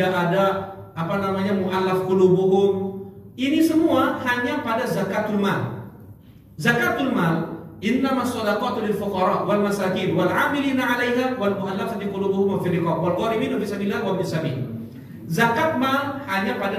ada apa namanya mu'allaf qulubuhum. Ini semua hanya pada zakatul mal. Zakatul mal innamas shadaqatu lil fuqara wal masakin wal 'amilina 'alaiha wal mu'allafati qulubuhum wa fil riqab wal gharimin fi sabilillah wa bis sabil. Zakat mal hanya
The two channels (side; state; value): both; identical; correlation 1.00